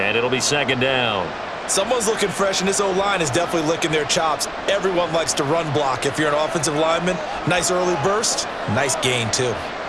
it'll be second down. Someone's looking fresh, and this O-line is definitely licking their chops. Everyone likes to run block. If you're an offensive lineman, nice early burst, nice gain too.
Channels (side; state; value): both; identical; correlation 1.00